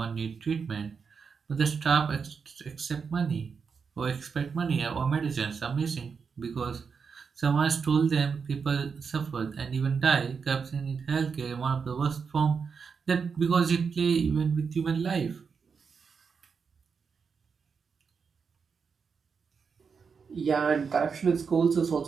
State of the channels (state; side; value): quieter; left; 5.8 dB